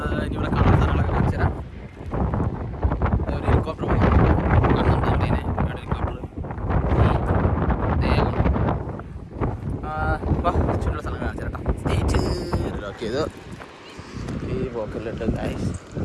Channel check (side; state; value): both; identical; correlation 1.00